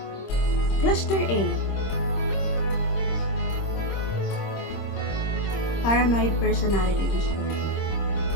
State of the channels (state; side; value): late; right; 26 ms